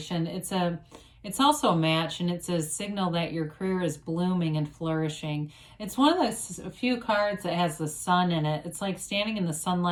it's also a match, and it's a signal that your career is blooming and flourishing. It's one of the few cards that has the sun in it. It's like standing in the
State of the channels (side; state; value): both; identical; correlation 1.00